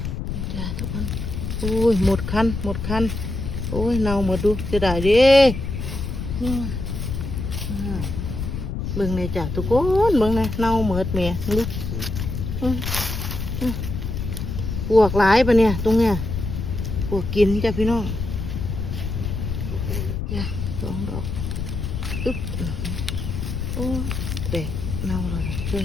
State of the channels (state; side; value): noise; left; rumble, 4 dB below the sound